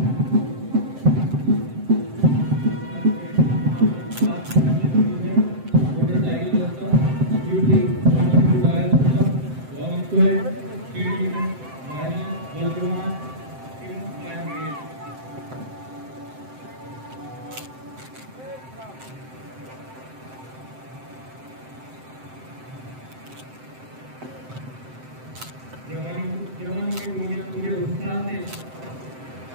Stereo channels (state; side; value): late; left; 7.7 ms